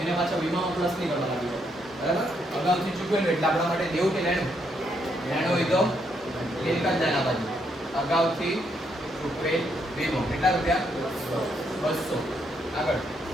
એને પાછા વીમામાં પ્લસ નહીં કરવા લાગ્યો. બરાબર? અગાઉથી ચૂકવેલ એટલે આપણા માટે દેવું કે લેણું? લેણું હોય તો મિલકત લેણા બાજુ. અગાઉથી ચૂકવેલ વીમો કેટલા રૂપિયા? 200. આગળ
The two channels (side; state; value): both; normal; correlation 0.75